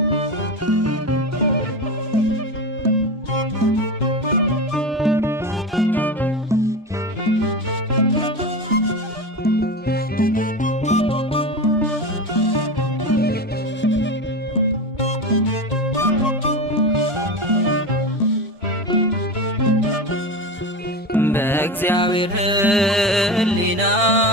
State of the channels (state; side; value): normal; both; correlation 0.24